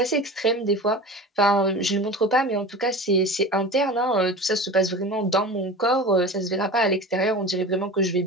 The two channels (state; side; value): normal; both; correlation 0.33